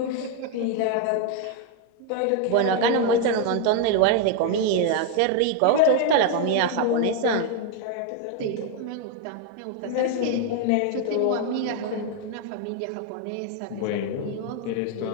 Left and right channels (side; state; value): both; different; correlation 0.01